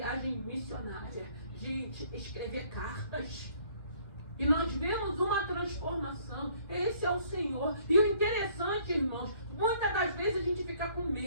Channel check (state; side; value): late; left; 1.8 ms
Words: missionária, de escrever cartas. E nós vemos uma transformação. Esse é o Senhor. E o interessante, irmãos, muitas das vezes a gente fica com